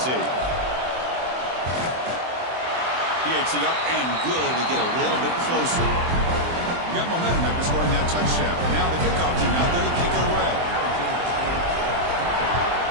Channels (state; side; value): late; left; 24 ms